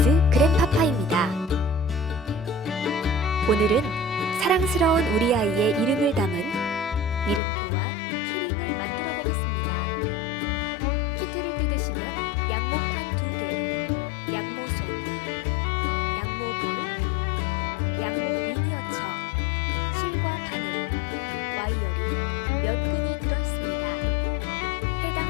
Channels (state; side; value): drops out; right; at 7.4 s